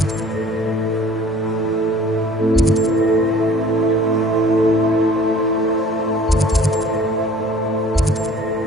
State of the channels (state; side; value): normal; both; correlation 0.51